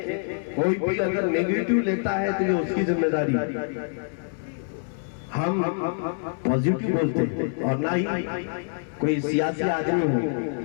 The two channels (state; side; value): silent; right; 61 dB below the other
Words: کوئی بھی اگر نیگیٹو لیتا ہے تو یہ اس کی ذمہ داری. ہم پازیٹو بولتے ہیں اور نہ ہی کوئی سیاسی آدمی ہو.